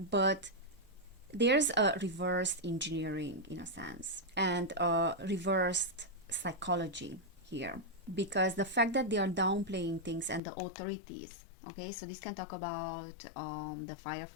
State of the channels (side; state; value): right; drops out; at 10.4 s